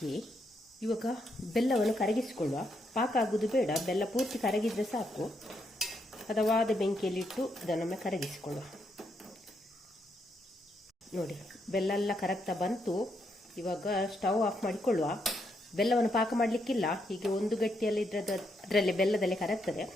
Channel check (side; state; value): both; normal; correlation 0.78